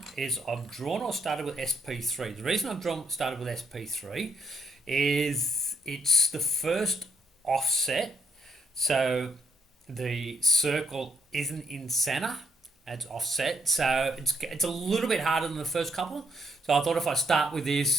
is I've drawn or started with SP3. The reason started with SP3 is it's the first offset. So the circle isn't in center, it's offset, so it's a little bit harder than the first couple. So I thought if I start with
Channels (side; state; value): both; normal; correlation 0.72